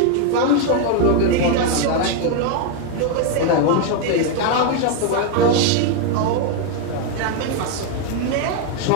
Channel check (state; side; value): different; both; correlation 0.01